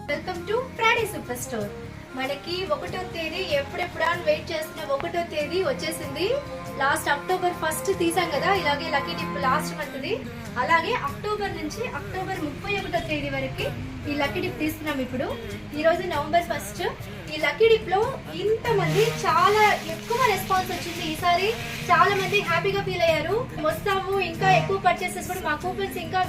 Welcome to Friday super store. మనకి 1వ తేదీ ఎప్పుడెప్పుడా వెయిట్ చేస్తున్న 1వ తేదీ వచ్చేసింది. లాస్ట్ అక్టోబర్ 1 తీసాం కదా, ఇలాగే లక్కీ డిప్ లాస్ట్ మంత్ది. అలాగే అక్టోబర్ నుంచి అక్టోబర్ 31వ తేదీ వరకు ఈ లక్కీ డిప్ తీస్తున్నాం. ఇప్పుడు ఈ రోజు నవంబర్ 1. ఈ లక్కీ డిప్ లో ఇంతమంది చాలా ఎక్కువ రెస్పాన్స్ వచ్చింది. ఈసారి చాలా మంది హ్యాపీగా ఫీల్ అయ్యారు. వస్తాము, ఇంకా ఎక్కువ పర్చేసెస్ కూడా మా కూపన్స్ ఇంకా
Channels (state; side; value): identical; both; correlation 1.00